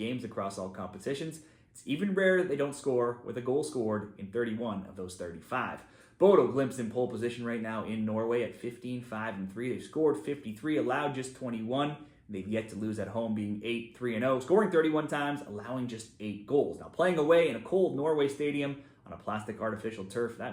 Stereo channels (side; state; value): both; identical; correlation 1.00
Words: across all competitions. It's even rare that they don't score with a goal scored in 31 of those 35. Bodo, Glimt's in pole position right now in Norway at 15-5-3. They've scored 53, allowed just 21. They've yet to lose at home, being 8-3-0, scoring 31 times, allowing just 8 goals. Now, playing away in a cold Norway stadium on a plastic artificial turf,